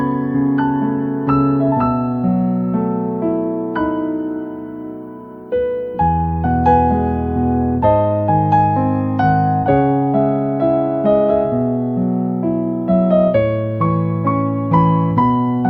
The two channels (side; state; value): both; identical; correlation 1.00